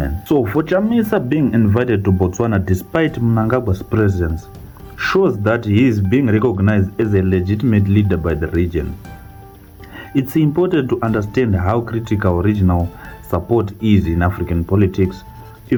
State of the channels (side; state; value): both; identical; correlation 1.00